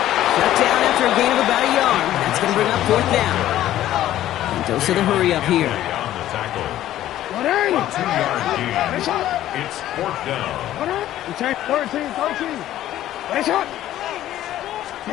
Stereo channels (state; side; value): quieter; right; 13.2 dB